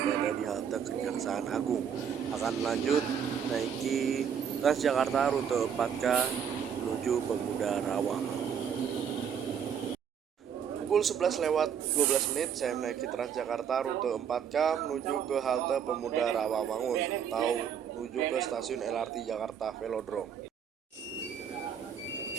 di halte Kejaksaan Agung. Akan lanjut naiki Transjakarta rute 4K menuju Pemuda Rawang. Pukul 11:12 saya menaiki Transjakarta rute 4K menuju ke halte Pemuda Rawamangun atau menuju ke stasiun LRT Jakarta Velodrome.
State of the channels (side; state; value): left; quieter; 7.9 dB